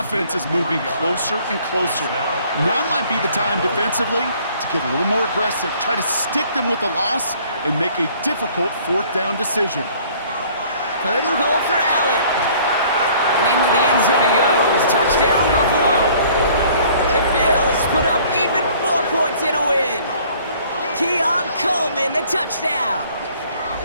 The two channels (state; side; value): inverted; both; correlation -0.56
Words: is moving closer and closer. Now might be the time defensively to get a little more aggressive, try to stick them with the loss, and make a difficult 4th down decision. 3rd and goal for Allen. And into the end zone he goes. Touchdown, Buffalo. The Bills put up even more points in a win. Keon Coleman, the touchdown.